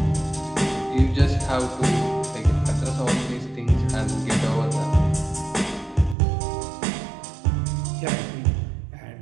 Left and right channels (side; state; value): left; drops out; at 6.2 s